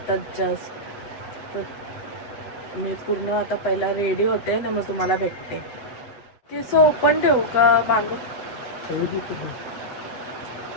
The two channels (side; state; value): right; late; 8.0 ms